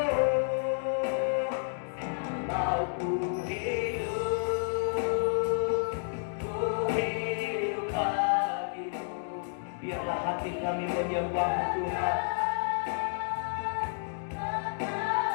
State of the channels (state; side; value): silent; right; digital silence